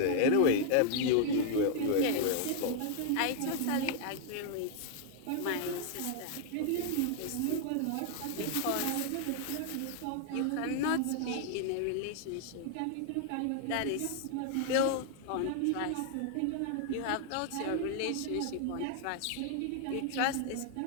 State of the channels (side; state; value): both; different; correlation 0.00